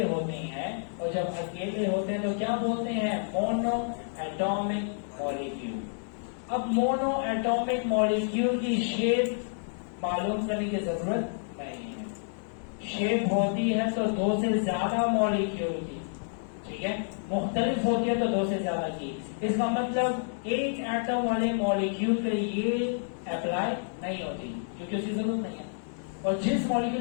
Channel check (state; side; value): silent; right; digital silence